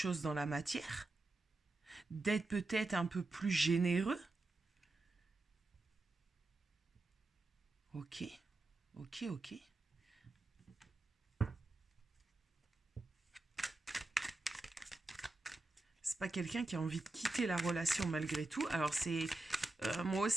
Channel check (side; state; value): left; quieter; 3.0 dB